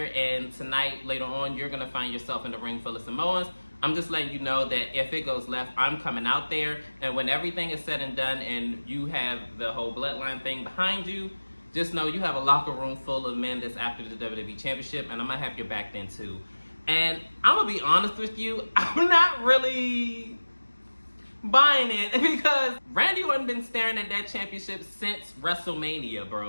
and tonight, later on, you're going to find yourself in the ring full of Samoans. I'm just letting you know that if it goes left, I'm coming out there, and when everything is said and done and you have the whole bloodline thing behind you, just know you have a locker room full of men that's after the WWE Championship, and I'm going to have your back then too. And I'm going to be honest with you, I'm not really buying it, because Randy Orton been staring at that championship since WrestleMania,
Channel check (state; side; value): inverted; both; correlation -1.00